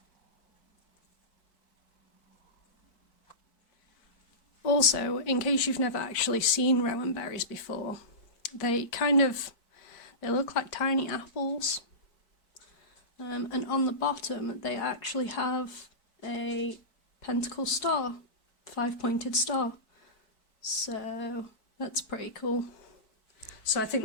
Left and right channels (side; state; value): right; late; 4.6 ms